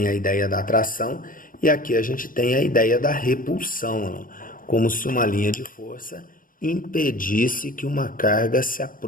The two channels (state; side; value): late; right; 0.40 ms